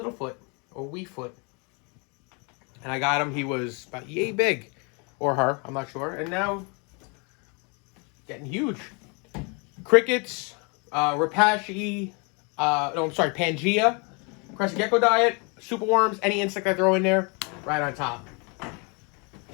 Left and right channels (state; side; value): quieter; right; 32.8 dB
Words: or Weefoot. And I got him, he was about yay big, or her, I'm not sure, and now getting huge. Crickets, Pangea, Krusty Gecko diet, superworms, any insect I throw in there, right on top.